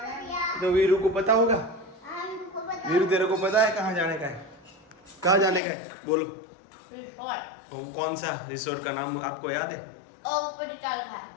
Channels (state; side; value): drops out; right; at 5.6 s